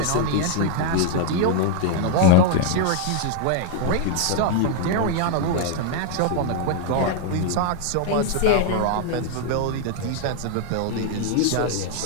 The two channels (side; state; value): both; different; correlation 0.00